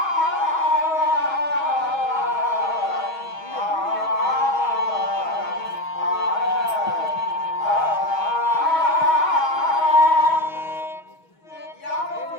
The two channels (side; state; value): right; late; 6.3 ms